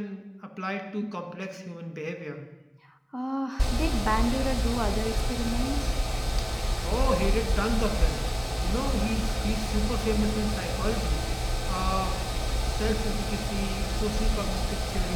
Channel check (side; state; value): both; identical; correlation 1.00